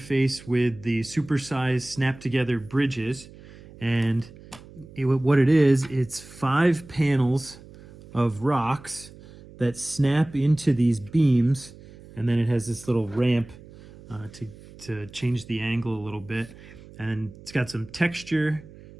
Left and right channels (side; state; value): right; noise; hum, 20 dB below the sound